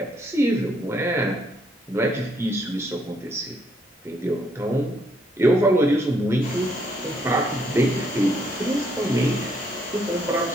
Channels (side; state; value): both; normal; correlation 0.72